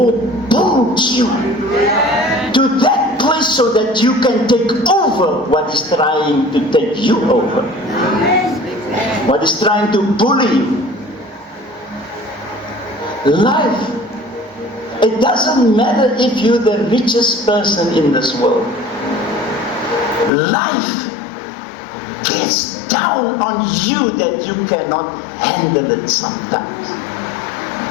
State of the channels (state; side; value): drops out; right; at 20.3 s